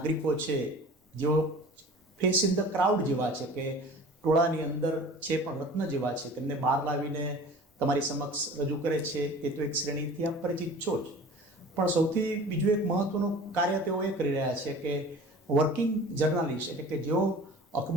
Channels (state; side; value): normal; both; correlation 0.42